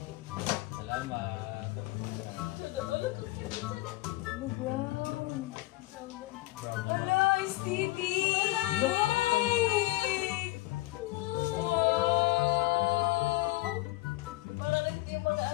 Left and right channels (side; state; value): right; quieter; 19.7 dB